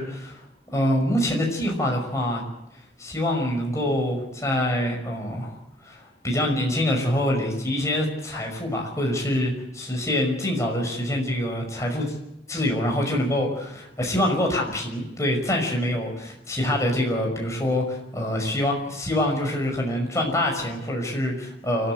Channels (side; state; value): both; normal; correlation 0.56